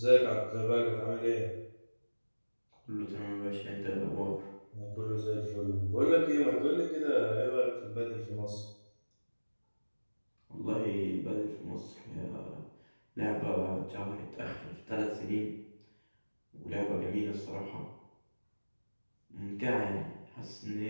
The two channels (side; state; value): both; inverted; correlation -1.00